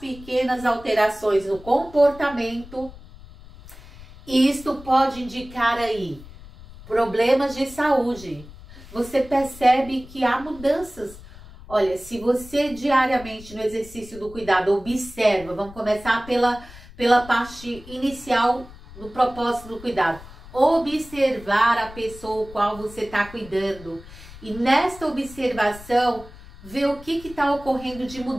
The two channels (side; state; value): left; noise; rumble, 18 dB below the sound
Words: alterações no comportamento. Isto pode indicar aí problemas de saúde. Você percebe que há mudanças. Olha, se você diariamente no exercício do cuidado observa, vamos começar pela parte inicial do propósito do cuidado. Observar a pessoa com qual você está cuidando. E nesta observação, ver o que está ocorrendo de